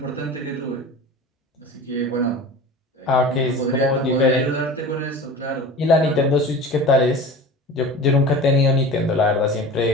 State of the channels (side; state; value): both; normal; correlation 0.36